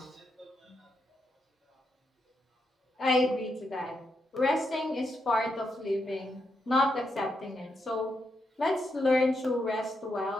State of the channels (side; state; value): both; normal; correlation 0.82